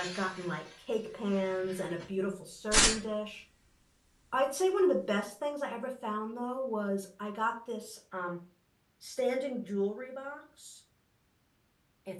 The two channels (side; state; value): both; identical; correlation 1.00